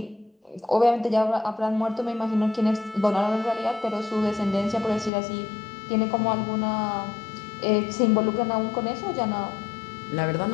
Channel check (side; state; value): right; drops out; at 5.1 s